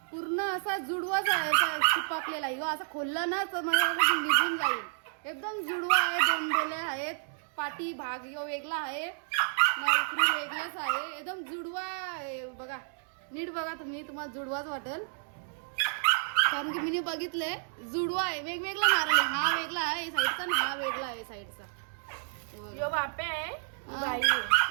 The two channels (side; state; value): left; silent; digital silence